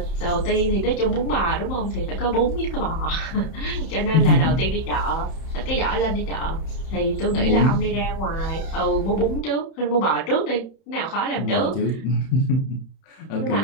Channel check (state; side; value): late; right; 31 ms